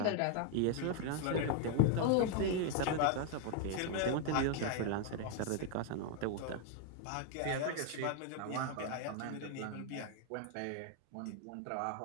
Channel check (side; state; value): both; different; correlation 0.00